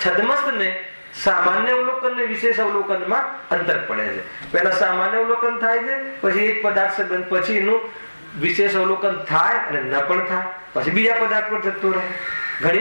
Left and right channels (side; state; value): both; inverted; correlation -1.00